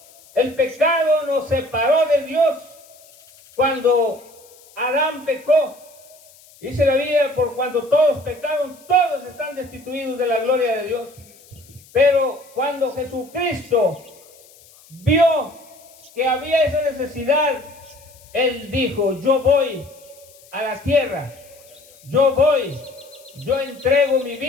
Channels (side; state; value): left; noise; hiss, 25 dB below the sound